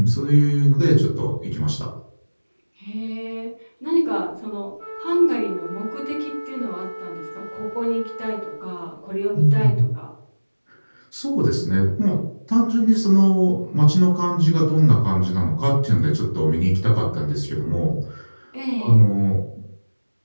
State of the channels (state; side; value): inverted; both; correlation -1.00